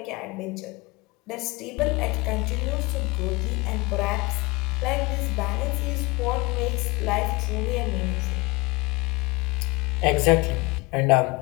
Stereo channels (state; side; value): quieter; right; 24.5 dB